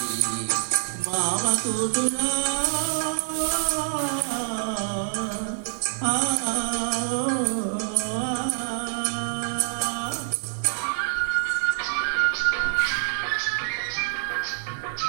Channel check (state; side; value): silent; left; 61 dB below the other